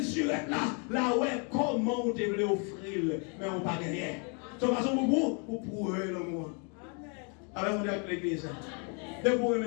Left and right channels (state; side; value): quieter; right; 37.0 dB